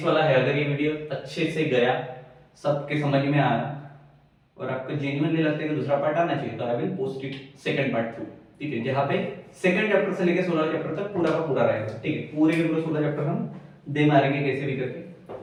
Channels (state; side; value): identical; both; correlation 1.00